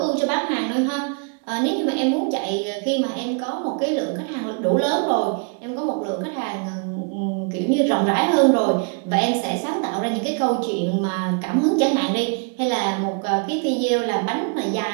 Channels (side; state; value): left; quieter; 38.2 dB